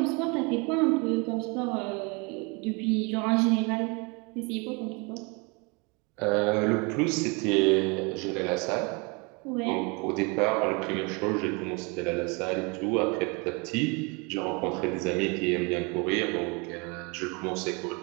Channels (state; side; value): quieter; left; 30.2 dB